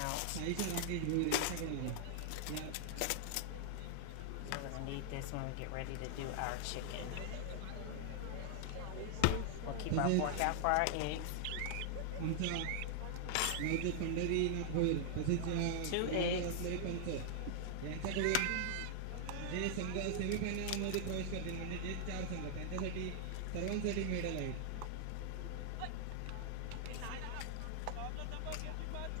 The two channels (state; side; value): different; both; correlation -0.01